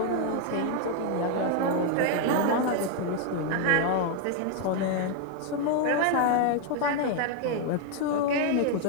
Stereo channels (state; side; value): different; both; correlation 0.01